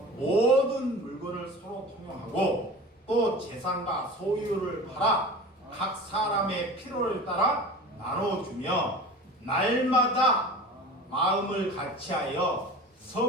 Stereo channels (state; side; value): normal; both; correlation 0.36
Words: 모든 물건을 서로 통용하고 또 재산과 소유를 팔아 각 사람의 필요를 따라 나눠주며 날마다 마음을 같이하여